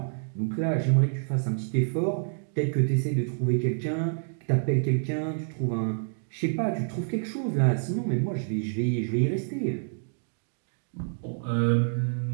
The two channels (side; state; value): left; silent; digital silence